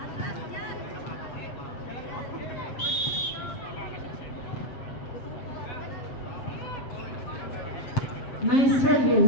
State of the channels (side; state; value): right; late; 7.8 ms